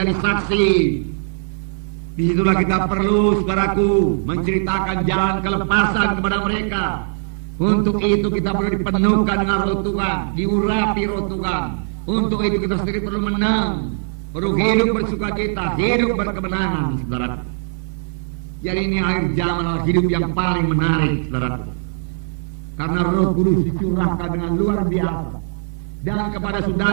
saksi, disitulah kita perlu, saudaraku, menceritakan jalan kelepasan kepada mereka. Untuk itu kita perlu dipenuhkan dengan roh Tuhan, diurapi roh Tuhan. Untuk itu kita sendiri perlu menang, perlu hidup bersukacita, hidup berkemenangan, saudara. Jadi ini akhir zaman adalah hidup yang paling menarik, saudara. Karena Roh Kudus dicurahkan dengan luar biasa, dan kepada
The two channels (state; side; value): silent; left; 62 dB below the other